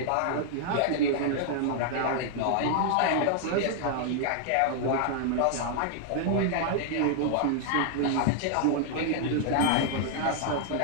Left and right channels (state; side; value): different; both; correlation 0.00